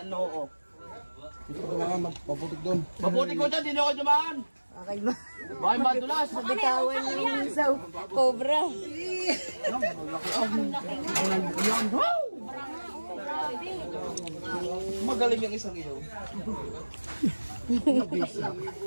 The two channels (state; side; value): inverted; both; correlation -1.00